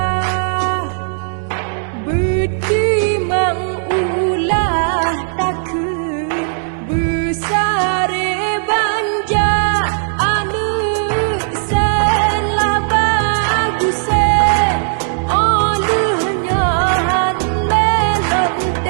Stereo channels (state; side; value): silent; left; digital silence